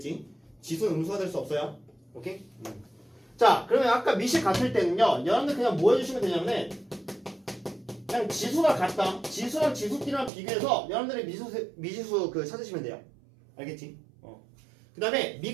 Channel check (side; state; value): left; drops out; at 10.3 s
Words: 지수는 음수가 될 수 없어요. 오케이? 자, 그러면 아까 미식 같을 때는요, 여러분들 그냥 뭐 해주시면 되냐면은, 그냥 지수가 같다. 지수랑 지수끼리만 비교해서 여러분들이 미지수 찾으시면 돼요. 알겠지? 그 그 다음에